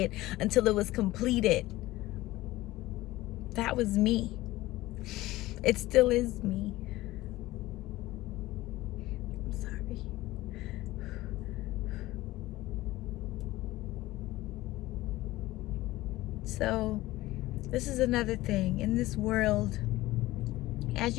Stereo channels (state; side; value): quieter; right; 17.6 dB